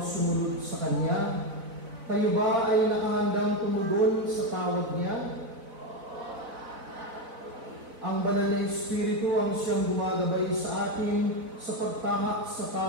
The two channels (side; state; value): left; late; 4.0 ms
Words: sumunod sa Kanya. Kayo ba ay nakahandang tumugon sa tawag Niya? Ang Banal na Espiritu ang siyang gumagabay sa atin sa pagtahak sa